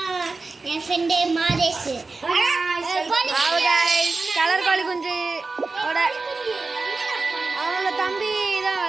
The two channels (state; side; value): quieter; left; 3.8 dB